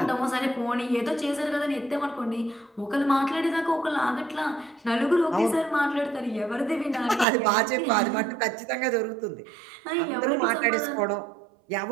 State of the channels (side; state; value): left; drops out; at 7.2 s